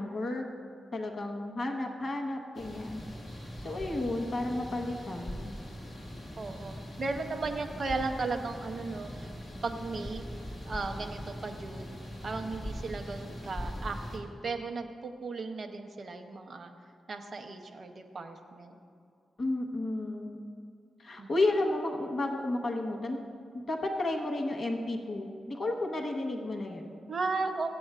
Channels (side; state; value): both; normal; correlation 0.89